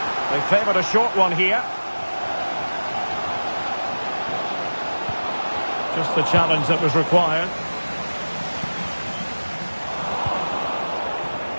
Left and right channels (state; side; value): inverted; both; correlation -1.00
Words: They favoured a short one here. Just the challenge that was required.